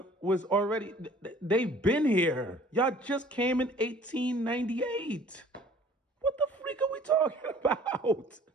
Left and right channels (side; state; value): both; normal; correlation 0.51